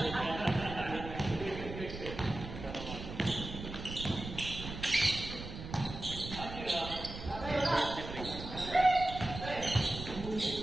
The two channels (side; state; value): right; noise; rumble, 9 dB below the sound